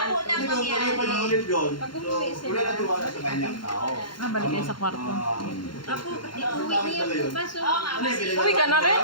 na Hindi ko mangyari. pa ulit yun. So, wala na tiwala sa kanyang tao. balik kayo sa kwarto. Apo, Uwi niya bukas. Oo nga, kasi. Uwi ka na rin?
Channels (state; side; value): late; right; 0.72 ms